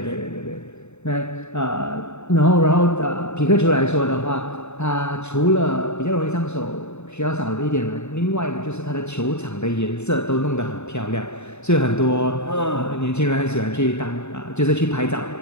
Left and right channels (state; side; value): late; right; 0.82 ms